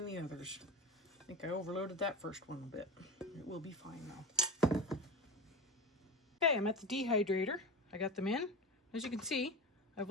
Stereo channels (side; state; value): both; normal; correlation 0.26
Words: the others. I think I overloaded that first one a bit. It will be fine now. Okay, I'm at the dehydrator. I got them in. As you can see, I've